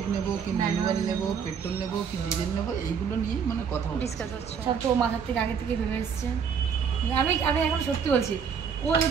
নেব কি ম্যানুয়াল নেব, পেট্রোল নেব কি ডিজেল নেব, এইগুলো নিয়ে মানে কথা হচ্ছে। ডিসকাস হচ্ছে। সব তো মাথার থেকে আগে থেকে ভেবে এসছে। আমি এখন সত্যি বলছি, ও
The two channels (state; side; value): quieter; left; 6.8 dB